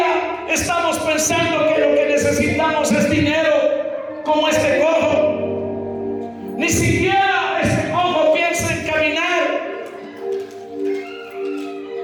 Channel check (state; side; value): identical; both; correlation 1.00